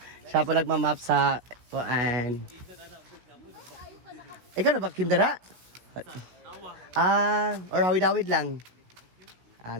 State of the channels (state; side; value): late; left; 16 ms